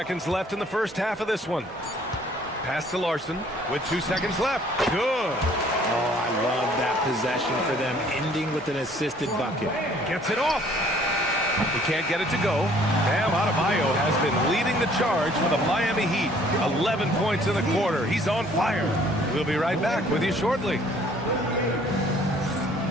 left in the first half of this one. Pass to Larson with 2 seconds left. Good. Oh, I love that possession for them, ending with an assisted bucket. Gets it off. He can't get it to go. Bam Adebayo has been leading the charge for the Miami Heat. 11 points in the quarter. He's on fire. We'll be right back with you shortly.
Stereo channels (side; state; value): both; normal; correlation 0.58